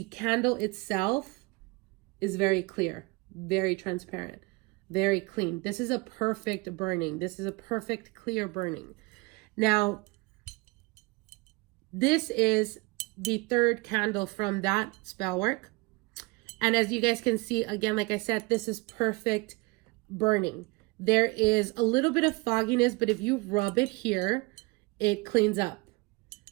candle itself is very clear, very transparent, very clean. This is a perfect burning. This is a perfect clear burning. Now, this is the third candle from that spell work. And as you guys can see, again, like I said, this is perfect burning. There is a little bit of fogginess, but if you rub it here, it cleans up.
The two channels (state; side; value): quieter; left; 25.5 dB